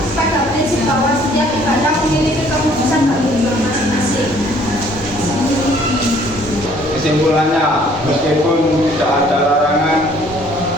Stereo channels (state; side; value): normal; both; correlation 0.59